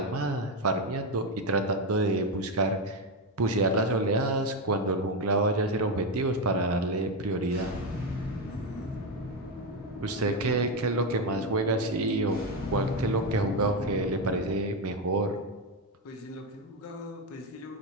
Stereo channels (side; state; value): both; normal; correlation 0.09